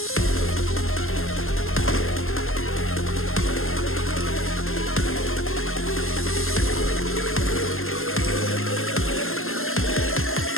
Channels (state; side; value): late; right; 0.61 ms